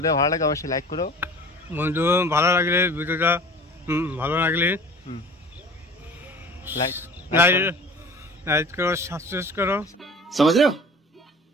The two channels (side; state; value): both; normal; correlation 0.42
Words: ভালো লাগে অবশ্যই লাইক করো। বন্ধু ভালো লাগলে ভিডিওটা ভালো লাগলে লাইক লাইক করো, সাবস্ক্রাইব করো। समझ रहे हो